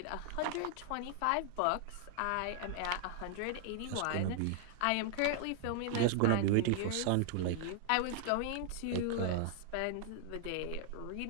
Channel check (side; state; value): both; different; correlation 0.00